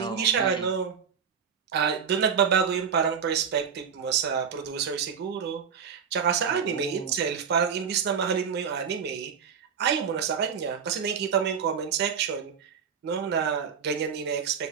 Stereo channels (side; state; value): left; quieter; 6.9 dB